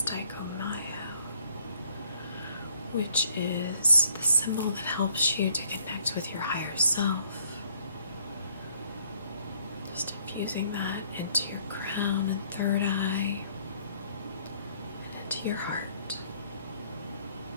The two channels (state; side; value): inverted; both; correlation -0.64